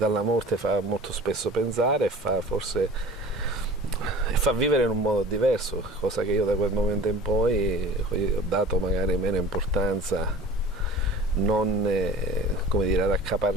morte, fa molto spesso pensare e fa vivere in un modo diverso, cosa che io da quel momento in poi ho dato magari meno importanza, non come dire, ad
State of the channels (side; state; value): both; normal; correlation 0.41